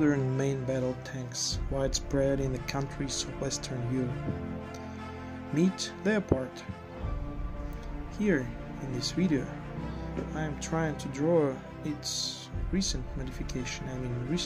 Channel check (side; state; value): both; identical; correlation 1.00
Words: main battle tanks widespread in the countries of Western Europe. Meet Leopard. Here in this video I am trying to draw its recent modification